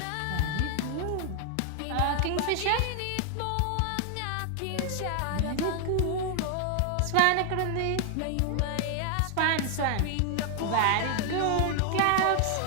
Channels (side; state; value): both; different; correlation 0.00